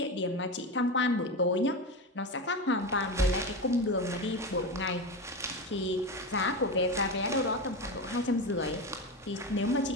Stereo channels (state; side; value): normal; both; correlation 0.20